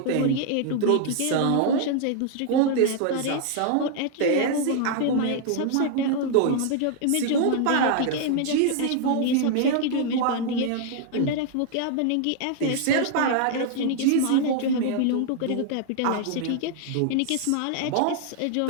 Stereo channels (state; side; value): different; both; correlation 0.00